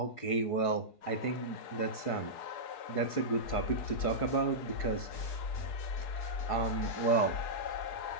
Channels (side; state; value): right; late; 4.7 ms